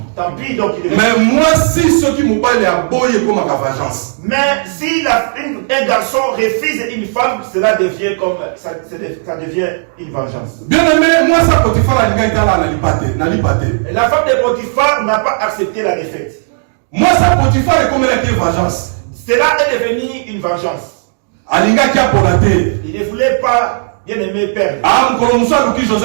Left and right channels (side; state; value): left; silent; digital silence